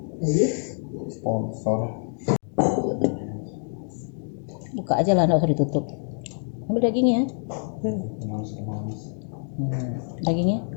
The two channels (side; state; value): right; silent; 57 dB below the other